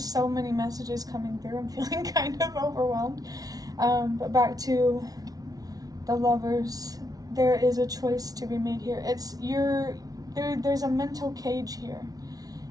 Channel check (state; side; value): late; left; 0.18 ms